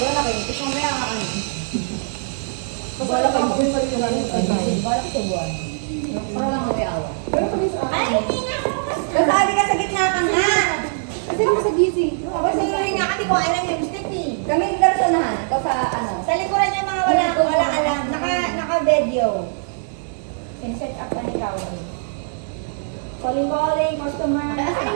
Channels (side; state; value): left; silent; 65 dB below the other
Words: kayo. Ito mamaya ano. Wala kayo. Wala kayo sa buwan. Para lang mawiawa. Ay, hindi nga ako. Kasabi ka sa gitna ka nga. Kasi ako sa busy. Kasi nga kasi ko alam yung stick eh. Kami dalasonahan. Ito sa ano. Sa likuran niya mga wala alam. Naka-video. Pin-set up pa ni Kaori. Calling, customer.